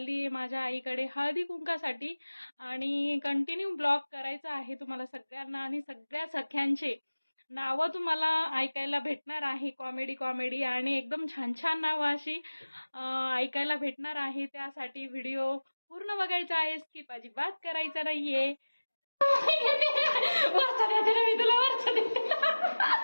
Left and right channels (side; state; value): both; inverted; correlation -1.00